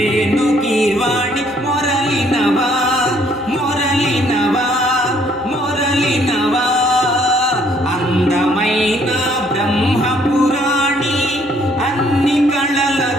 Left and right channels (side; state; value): both; normal; correlation 0.65